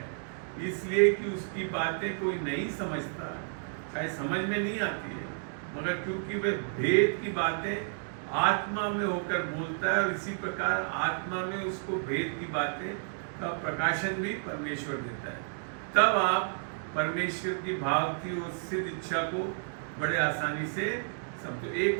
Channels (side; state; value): left; silent; digital silence